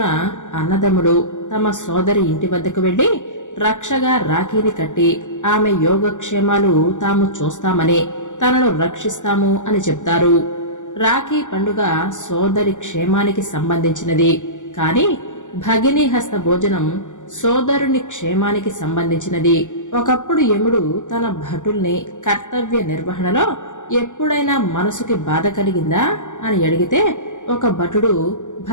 అన్నదమ్ములు తమ సోదరి ఇంటి వద్దకు వెళ్లి రక్షగా రాఖీని కట్టి ఆమె యోగక్షేమాలు తాము చూస్తామని, తనను రక్షిస్తాము అని చెప్తారు. రాఖీ పండుగ సోదరి క్షేమానికి సంబంధించినది. కాని భగిని హస్త భోజనం సోదరుని క్షేమానికి సంబంధించినది. ఒకప్పుడు యముడు తన భటుల్ని కర్తవ్య నిర్వహణలో ఎప్పుడైనా మనసుకి బాధ కలిగిందా అని అడిగితే, ఒక భటుడు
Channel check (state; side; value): late; right; 0.86 ms